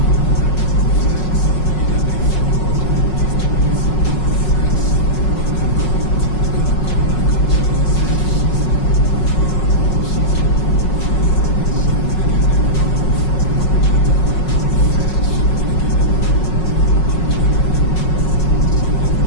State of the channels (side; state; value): right; late; 5.4 ms